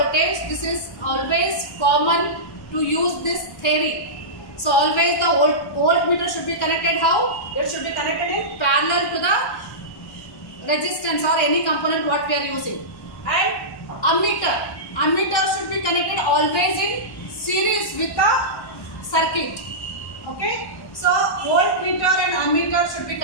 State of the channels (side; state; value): right; late; 1.1 ms